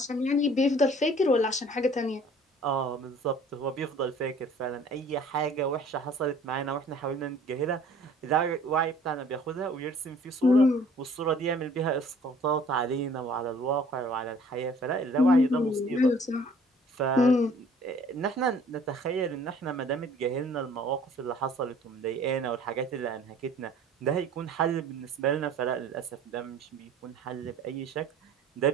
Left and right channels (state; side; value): normal; both; correlation 0.53